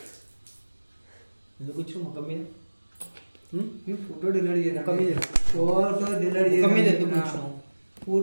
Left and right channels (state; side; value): inverted; both; correlation -1.00